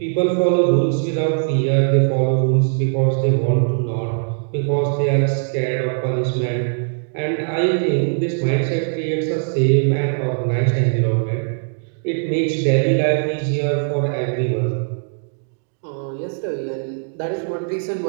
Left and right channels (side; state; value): left; silent; 66 dB below the other